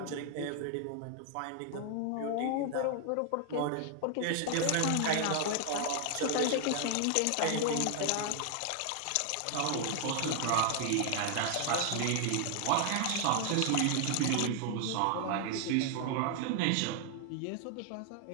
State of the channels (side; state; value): both; different; correlation 0.00